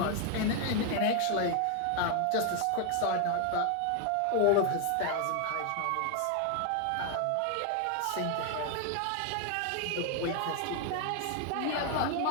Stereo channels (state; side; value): different; both; correlation 0.00